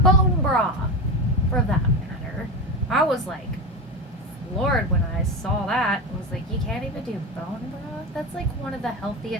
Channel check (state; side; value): normal; both; correlation 0.20